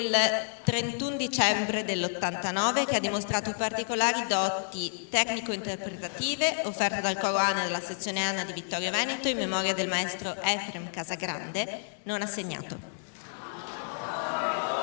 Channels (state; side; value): silent; right; digital silence